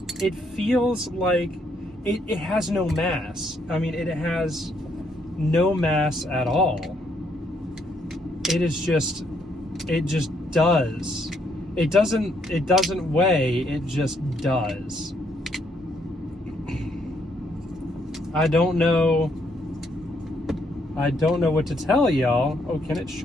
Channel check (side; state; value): both; normal; correlation 0.72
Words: it feels like it has no mass. I mean, it has no mass at all. It just does. It doesn't weigh, it just does. I don't know what to tell y'all. Oh, can it